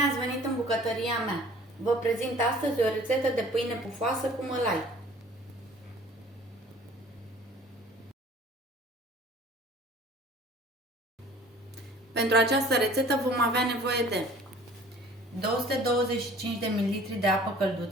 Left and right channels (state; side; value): normal; both; correlation 0.49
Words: ați venit în bucătăria mea! Vă prezint astăzi o rețetă de pâine pufoasă cu mălai. Pentru această rețetă vom avea nevoie de 225 de ml de apă